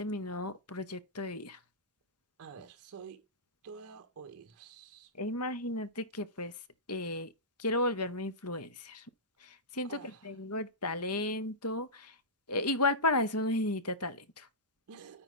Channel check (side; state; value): both; normal; correlation -0.15